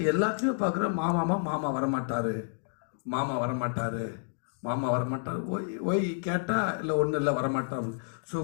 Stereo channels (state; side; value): silent; right; digital silence